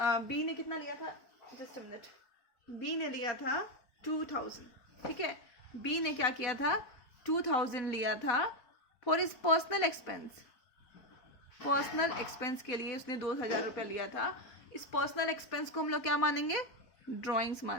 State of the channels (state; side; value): late; right; 4.0 ms